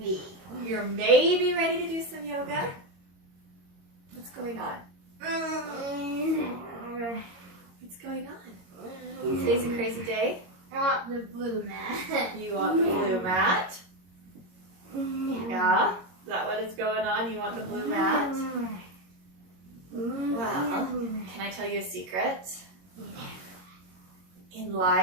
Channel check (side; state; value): left; late; 22 ms